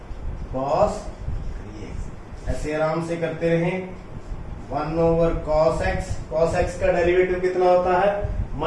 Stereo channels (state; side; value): identical; both; correlation 1.00